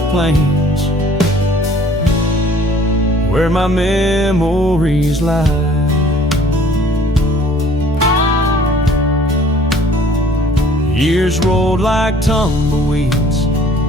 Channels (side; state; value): both; normal; correlation 0.54